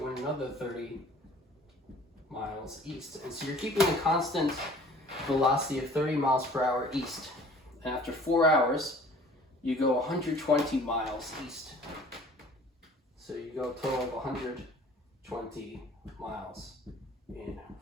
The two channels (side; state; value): both; normal; correlation 0.50